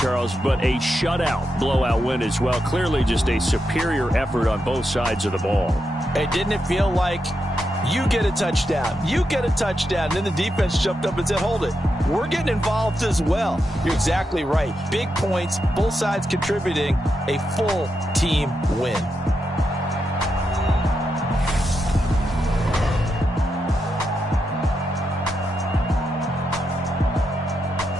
but a shutout blowout win as well. Clearly just a superior effort on both sides of the ball. Hey, didn't it feel like you get a touchdown, you get a touchdown, and then the defense jumped up and said, hold it, we're getting involved as well. You're exactly right. Big points, both sides contributing, a full team win.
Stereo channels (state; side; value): normal; both; correlation 0.85